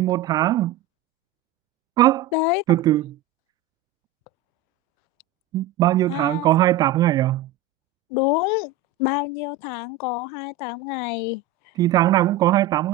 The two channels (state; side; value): quieter; left; 6.3 dB